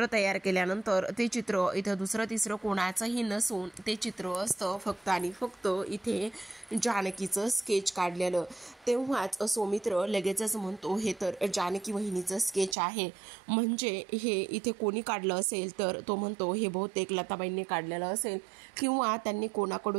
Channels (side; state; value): left; drops out; at 12.8 s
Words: तयार केल्यानंतर ते चित्र इथं दुसरं तिसरं कोणाचंही नसून ते चित्र असतं फक्त आणि फक्त इथे जानकीचं स्केच काढलेलं. तेव्हाच सौमित्र लगेचच म्हणतो, हे तर जानकी वहिनीचं स्केच आहे, म्हणजे हे इथे कोणी काढलं असेल तर तो म्हणतो हे बहुतेक लताबाईंनी काढलेलं असेल किंवा त्यांनी